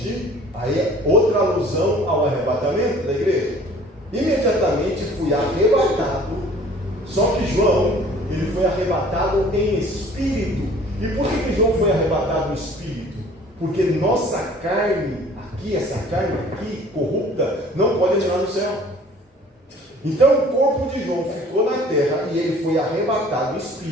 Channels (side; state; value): both; normal; correlation 0.51